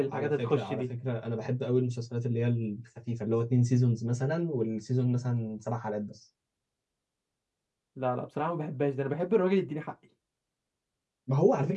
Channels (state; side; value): identical; both; correlation 1.00